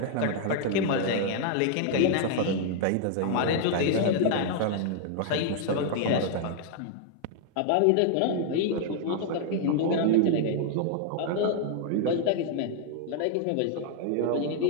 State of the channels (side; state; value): both; different; correlation 0.00